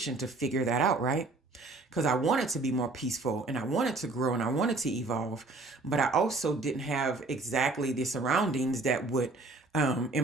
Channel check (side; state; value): left; quieter; 3.3 dB